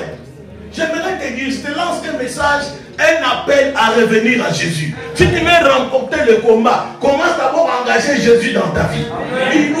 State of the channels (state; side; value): identical; both; correlation 1.00